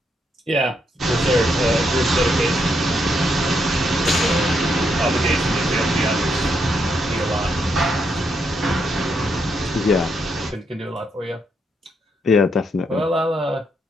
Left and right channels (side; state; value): both; normal; correlation 0.78